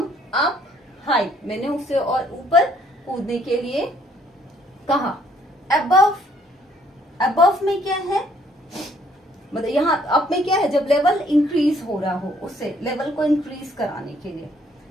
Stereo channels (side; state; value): both; normal; correlation 0.64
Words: up high, मैंने उसे और ऊपर कूदने के लिए कहा। अबव, अबव में क्या है, मतलब यहाँ अप में क्या है, जब लेवल इंक्रीज हो रहा हो, उससे लेवल को इंक्रीज कराने के लिए।